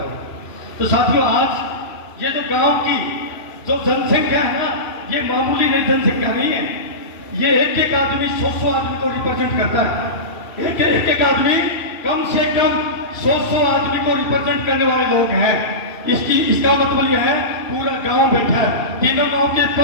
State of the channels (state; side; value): late; right; 2.7 ms